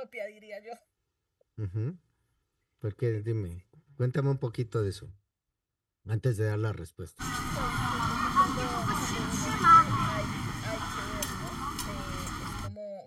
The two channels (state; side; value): identical; both; correlation 1.00